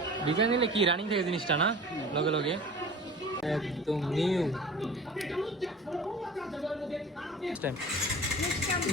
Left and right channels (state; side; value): normal; both; correlation 0.41